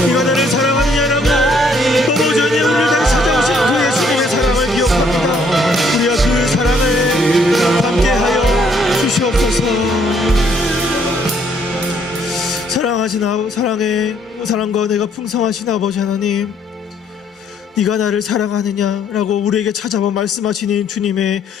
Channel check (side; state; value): both; normal; correlation 0.66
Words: 네가 나를 사랑하느냐라고 너무 전에 우리를 다시 찾아오신 그 예수님의 사랑을 기억합니다. 우리가 그 사랑을 함께하여 주시옵소서. 사랑하신 사랑과 내가 풍성하신 아버지 하나님, 네가 나를 사랑하느냐라고 우리에게 찾아와 말씀하시는 주님의